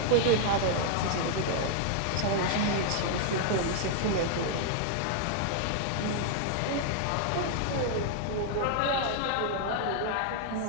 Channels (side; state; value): both; different; correlation 0.00